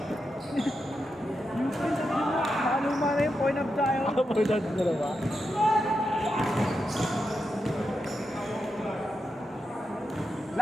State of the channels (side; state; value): both; normal; correlation 0.87